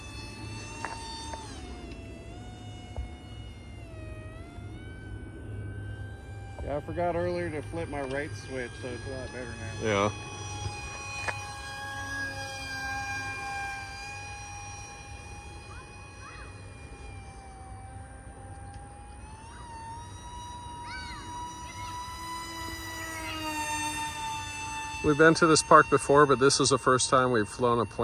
Yeah, I forgot earlier to flip my right switch, so it's a lot better now. Yeah. We've been to this park before, but this is the first time we've flown a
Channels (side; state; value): both; identical; correlation 1.00